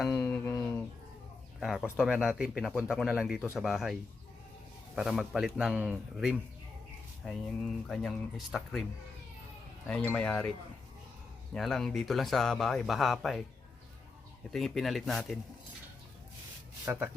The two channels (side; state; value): right; quieter; 4.0 dB